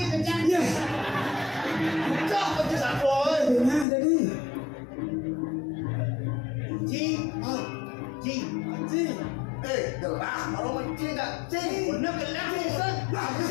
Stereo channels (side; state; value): right; drops out; at 3.9 s